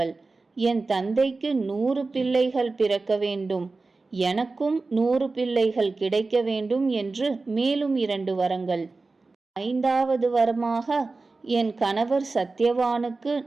என் தந்தைக்கு 100 பிள்ளைகள் பிறக்க வேண்டும், எனக்கும் 100 பிள்ளைகள் கிடைக்க வேண்டும் என்று மேலும் 2 வரங்கள். 5வது வரமாக என் கணவர் சத்யவானுக்கு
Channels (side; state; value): left; quieter; 3.7 dB